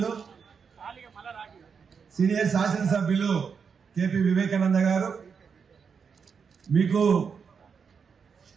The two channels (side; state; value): left; quieter; 6.1 dB